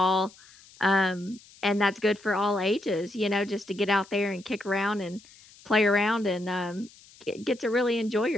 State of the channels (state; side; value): noise; left; hiss, 24 dB below the sound